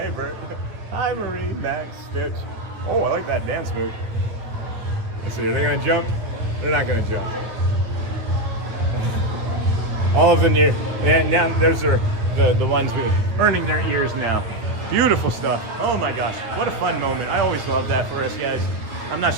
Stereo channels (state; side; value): late; left; 9.2 ms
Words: Bert. Hi, Marie, Max, Stitch. Oh, I like that dance move. Let's see, are they gonna jump? They're not gonna jump. All of them here. And now those are the ones burning their ears now. Beautiful stuff. Oh my gosh, what a fun moment. I always love that for us guys. I'm not